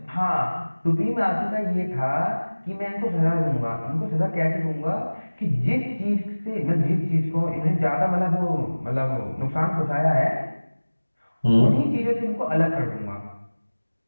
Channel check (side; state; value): both; inverted; correlation -1.00